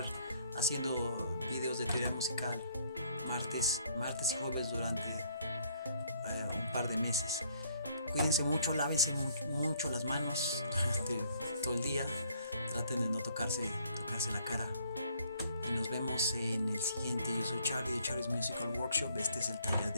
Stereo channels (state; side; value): inverted; both; correlation -0.63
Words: haciendo videos de teoría musical martes y jueves durante un par de meses. Cuídense mucho, lávense mucho las manos durante todo el día. Traten de no tocarse la cara. Y nos vemos en el siguiente. Yo soy Charlie de Charlie's Musical Workshop. Este es el taller